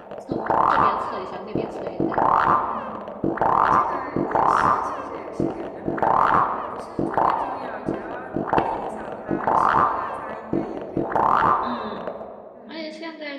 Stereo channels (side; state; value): both; identical; correlation 1.00